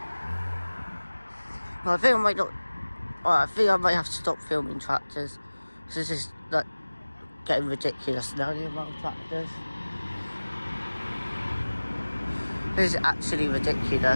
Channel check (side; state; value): both; inverted; correlation -1.00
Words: Well, I think I might not... Well, I think I might have to stop filming tractors. This is like getting ridiculous now, the amount of tractors. This is actually